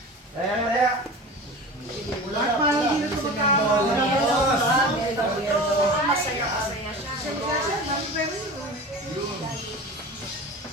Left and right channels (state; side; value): normal; both; correlation 0.34